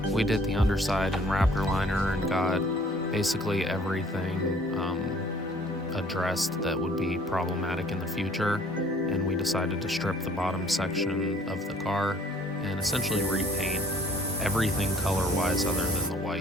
we did the underside and Raptor liner and got basically everything addressed that would be problematic in the future, and we decided to strip the bottom section of the car and essentially repaint everything color-wise other than the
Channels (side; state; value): both; normal; correlation 0.56